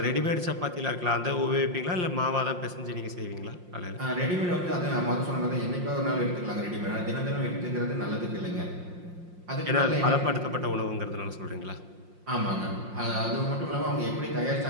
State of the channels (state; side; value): late; left; 5.6 ms